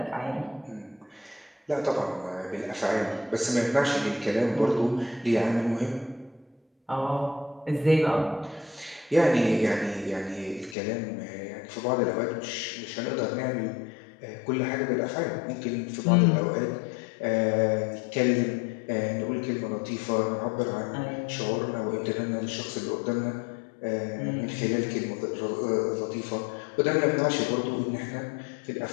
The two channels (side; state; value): right; drops out; at 10.8 s